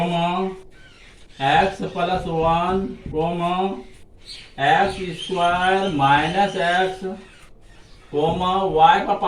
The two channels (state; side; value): identical; both; correlation 1.00